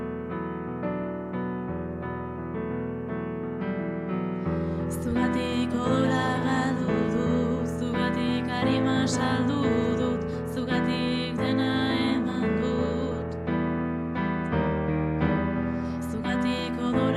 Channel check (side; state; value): both; identical; correlation 1.00